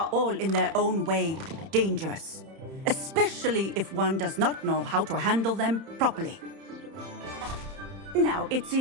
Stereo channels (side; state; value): left; late; 31 ms